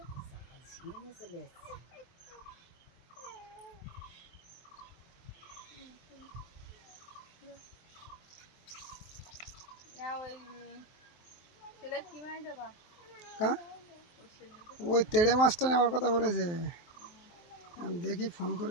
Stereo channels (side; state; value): right; late; 23 ms